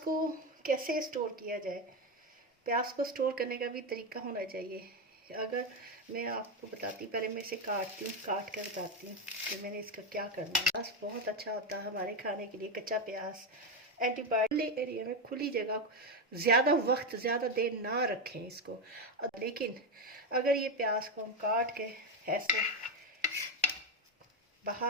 कैसे स्टोर किया जाए? प्याज को स्टोर करने का भी तरीका होना चाहिए। अगर मैं आपको बताती, पहले मैं इसे काटती हूँ, काट कर बताती हूँ कि मैंने इसका क्या करना है। प्याज बहुत अच्छा होता है हमारे खाने के लिए। कच्चा प्याज एंटीबायोटिक एरिया में, खुली जगह, ज़्यादा वक्त ज़्यादा देर ना रखें इसको। लेकिन अगर ये प्याज को हम काट के ऐसे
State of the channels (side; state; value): both; normal; correlation 0.10